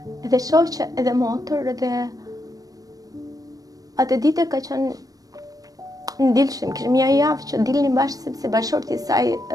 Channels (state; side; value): late; left; 0.18 ms